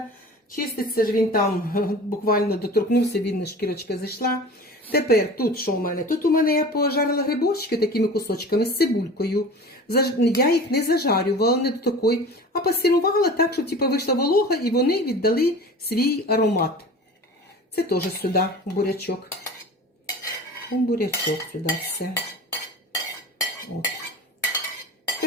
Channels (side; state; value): both; normal; correlation 0.38